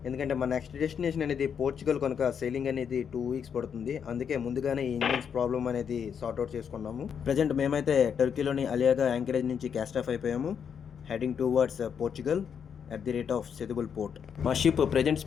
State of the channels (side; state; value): right; quieter; 7.4 dB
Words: ఎందుకంటే మా నెక్స్ట్ డెస్టినేషన్ అనేది పోర్చుగల్ కనుక సెయిలింగ్ అనేది 2 వీక్స్ పడుతుంది. అందుకే ముందుగానే ఈ ఇంజిన్స్ ప్రాబ్లమ్ అనేది సార్ట్అవుట్ చేసుకున్నాము. ప్రజెంట్ మేమైతే టర్కీలోని అలియాగా యాంకరేజ్ నుంచి క్యాస్ట్ ఆఫ్ అయిపోయాము. Heading towards Portugal at the rate of సెదుబుల్ port. మా షిప్ ప్రజెంట్